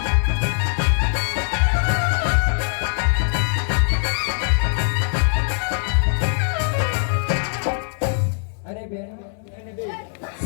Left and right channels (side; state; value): right; silent; digital silence